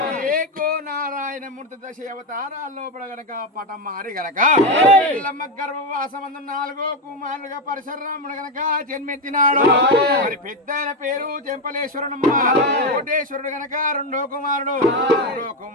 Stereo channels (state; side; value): normal; both; correlation 0.10